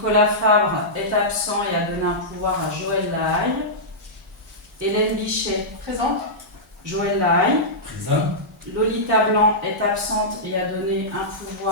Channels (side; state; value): both; normal; correlation -0.13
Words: Fabre est absent et a donné un pouvoir à Joël Lahaye. Hélène Bichet, Présente. Joël Lahaye. Présent. Lolita Blanc est absente et a donné un